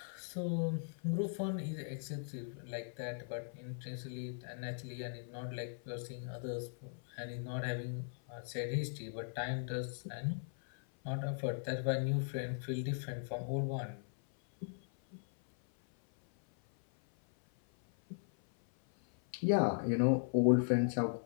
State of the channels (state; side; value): silent; right; 52 dB below the other